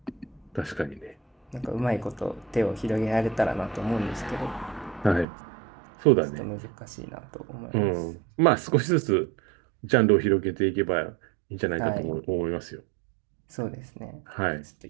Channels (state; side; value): drops out; left; at 5.2 s